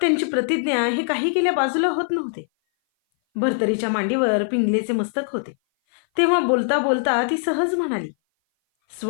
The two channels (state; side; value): silent; right; 58 dB below the other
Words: प्रतिज्ञा हे काही केल्या बाजूला होत नव्हते. भर्तरीच्या मांडीवर पिंगलेचे मस्तक होते. तेव्हा बोलता बोलता ती सहज म्हणाली,